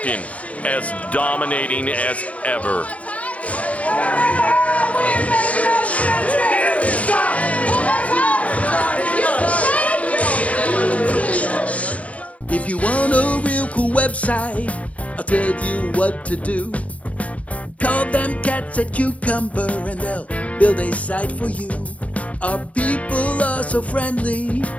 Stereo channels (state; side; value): late; right; 0.066 ms